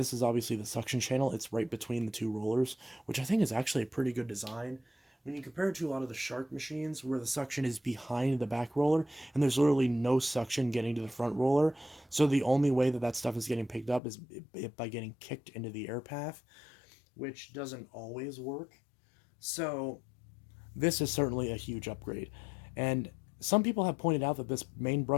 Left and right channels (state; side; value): drops out; right; at 14.0 s